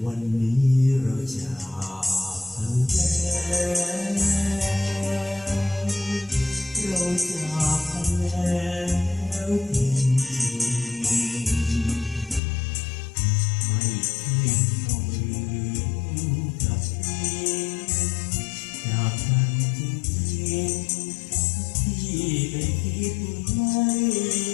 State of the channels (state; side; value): drops out; right; at 12.4 s